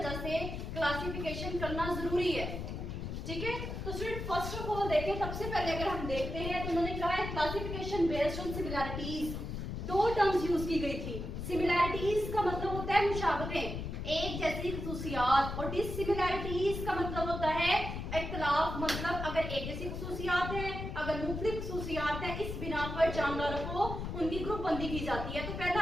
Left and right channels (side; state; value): left; noise; rumble, 5 dB below the sound